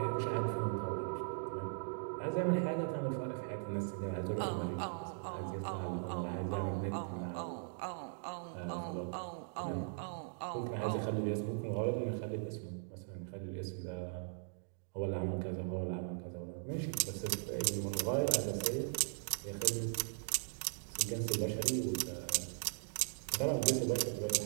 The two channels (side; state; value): left; silent; digital silence